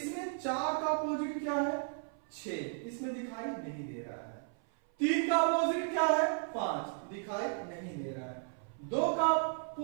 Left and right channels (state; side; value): silent; left; 55 dB below the other